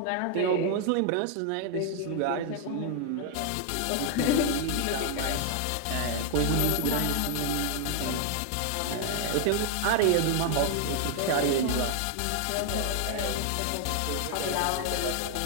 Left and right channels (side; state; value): both; different; correlation 0.00